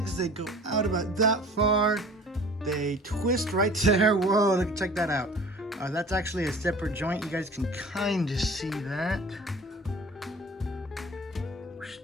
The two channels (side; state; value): both; normal; correlation 0.45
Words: they go out about that far. They twist right there. Whoa, check that out. That's actually a separate joint. You guys can kind of see that.